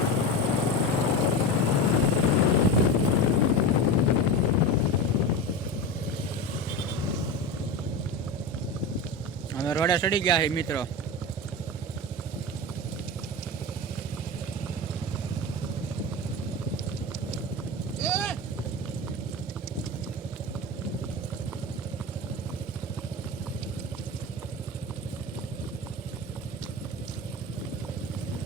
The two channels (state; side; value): normal; both; correlation 0.24